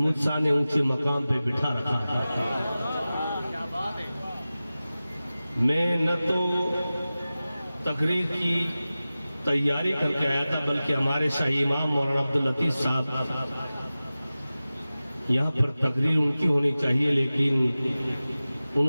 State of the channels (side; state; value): both; inverted; correlation -0.96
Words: شاہ نے اونچے مقام پہ بٹھا رکھا ہے۔ میں نہ تو تقریر کی تیاری کر کے آیا تھا، بلکہ ہمارے شاہی امام مولانا عبداللطیف صاحب یہاں پر تقریر ان کی ہونی چاہیے، لیکن